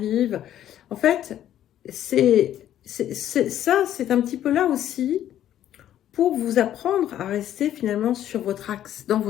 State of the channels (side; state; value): right; quieter; 11.5 dB